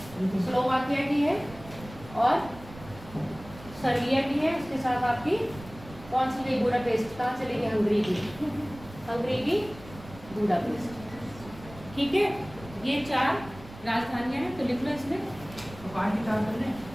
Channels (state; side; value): noise; right; rumble, 17 dB below the sound